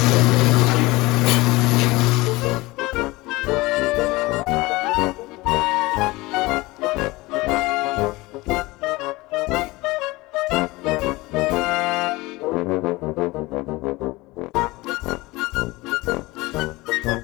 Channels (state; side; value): quieter; right; 21.4 dB